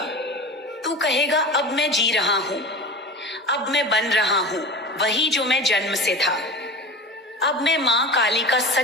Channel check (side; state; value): both; normal; correlation 0.32